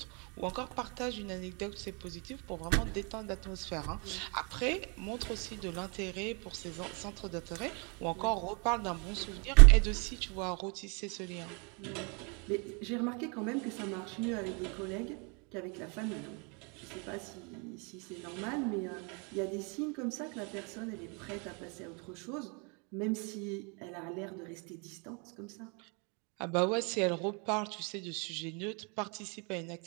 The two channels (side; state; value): left; quieter; 33.7 dB